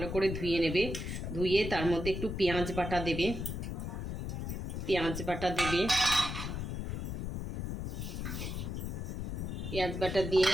করে ধুয়ে নেবে, ধুয়ে তার মধ্যে একটু পেঁয়াজ বাটা দেবে, পেঁয়াজ বাটা দিয়ে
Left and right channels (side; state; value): left; noise; rumble, 4 dB below the sound